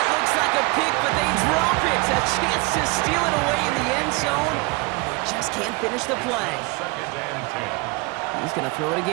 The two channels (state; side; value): quieter; left; 25.8 dB